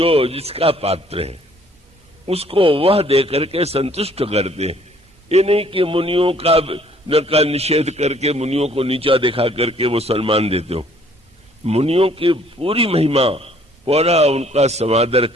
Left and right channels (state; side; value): normal; both; correlation 0.60